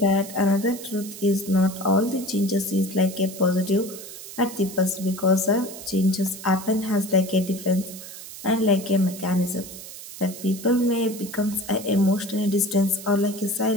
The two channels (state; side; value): noise; right; hiss, 13 dB below the sound